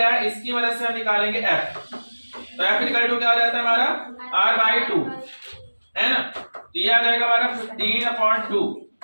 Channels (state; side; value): inverted; both; correlation -1.00